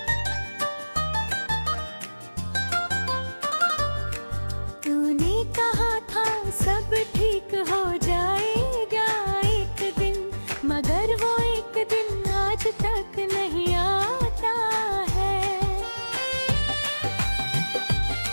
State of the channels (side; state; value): both; inverted; correlation -1.00